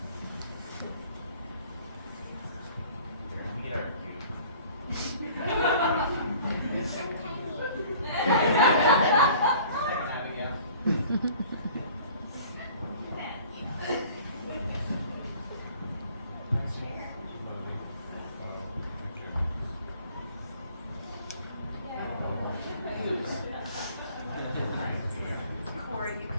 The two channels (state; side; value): inverted; both; correlation -0.50